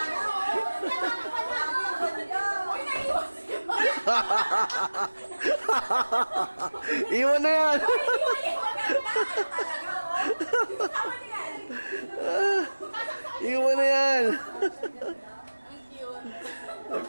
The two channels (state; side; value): inverted; both; correlation -1.00